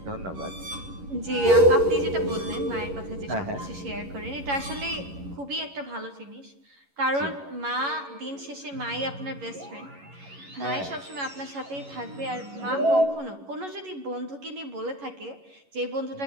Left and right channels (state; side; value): late; left; 11 ms